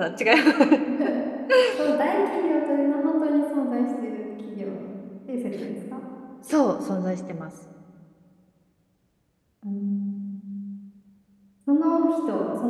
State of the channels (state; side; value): identical; both; correlation 1.00